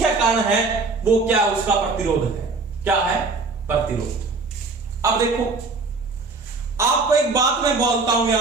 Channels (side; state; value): left; quieter; 3.9 dB